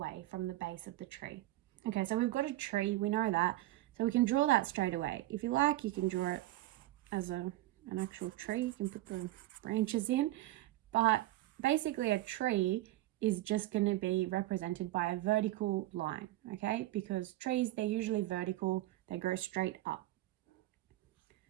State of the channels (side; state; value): left; quieter; 16.5 dB